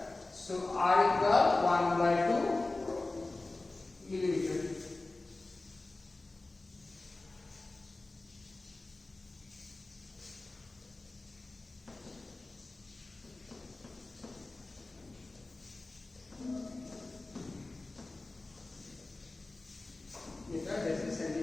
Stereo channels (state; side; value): quieter; right; 3.1 dB